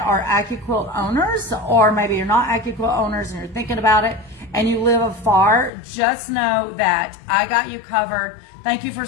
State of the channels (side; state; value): right; drops out; at 5.7 s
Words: are AccuQuilt owners, or maybe you're not AccuQuilt owners and you're thinking about it and you live afar, just know that I got you covered. Thank you for